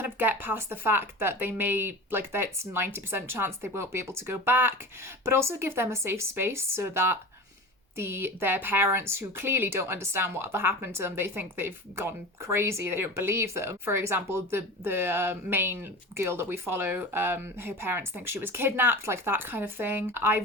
of get past the fact that they may, that's 90% chance they won't be able to go back, but also give them a safe space so that their parents, who clearly don't understand what happened to them, they think they've gone crazy, they don't believe them. For example, the main girl that we follow, her parents think she was kidnapped, like that kind of thing. I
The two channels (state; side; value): normal; both; correlation 0.33